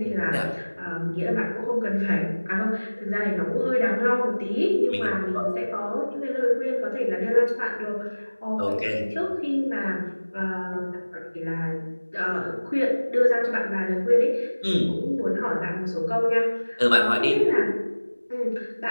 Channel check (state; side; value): inverted; both; correlation -1.00